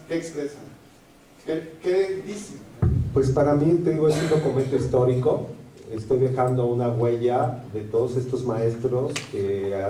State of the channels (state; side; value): identical; both; correlation 1.00